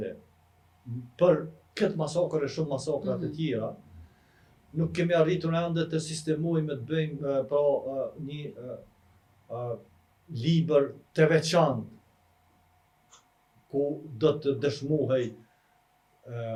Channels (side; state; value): both; identical; correlation 1.00